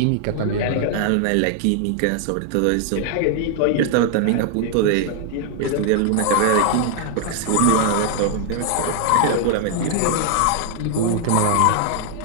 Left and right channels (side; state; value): both; different; correlation 0.00